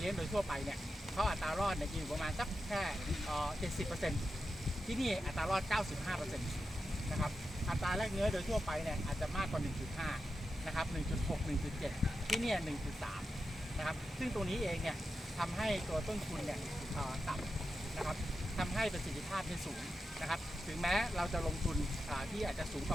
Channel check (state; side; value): normal; both; correlation 0.89